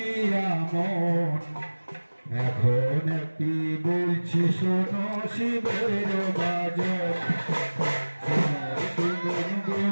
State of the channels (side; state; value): both; inverted; correlation -1.00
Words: মন। এখন একটি বলছি শোনো শিবের বাজন। শুনুন